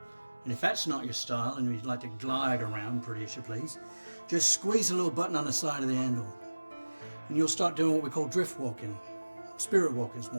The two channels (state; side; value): inverted; both; correlation -1.00